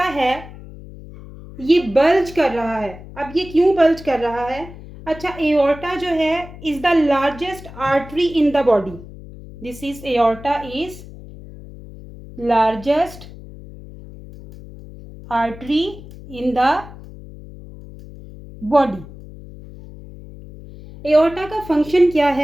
है ये बल्ज कर रहा है। अब ये क्यों बल्ज कर रहा है? अच्छा, एओर्टा जो है is the largest artery in the body. This is aorta is largest artery in the body. Aorta का फंक्शन क्या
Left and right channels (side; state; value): left; noise; hum, 16 dB below the sound